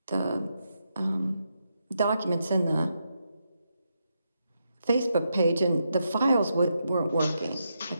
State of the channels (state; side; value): inverted; both; correlation -0.83